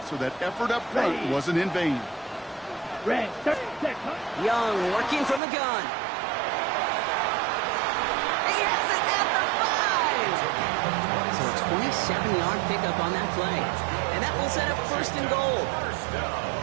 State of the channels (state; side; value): drops out; left; at 5.4 s